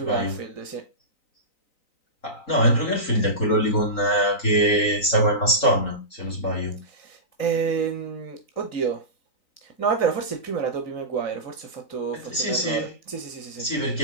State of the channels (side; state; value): right; late; 3.9 ms